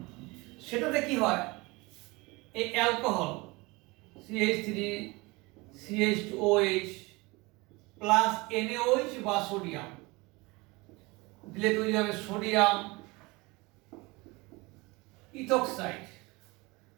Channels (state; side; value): quieter; left; 24.2 dB